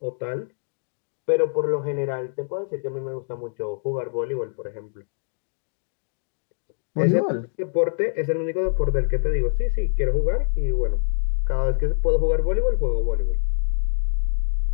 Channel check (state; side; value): silent; right; digital silence